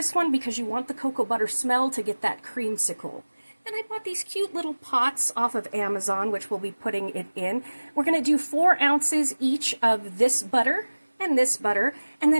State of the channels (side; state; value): both; inverted; correlation -1.00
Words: one because you want the cocoa butter smell to get that creamsicle. Then I bought these cute little pots off of Amazon, which we'll be putting it in. We're going to do 4 ounces each of this butter, and